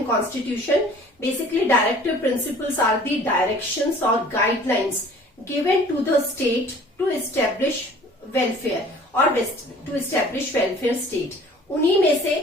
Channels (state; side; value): normal; both; correlation 0.49